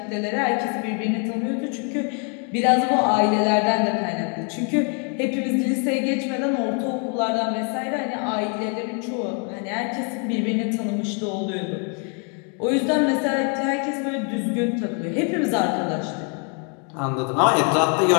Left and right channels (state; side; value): quieter; right; 39.1 dB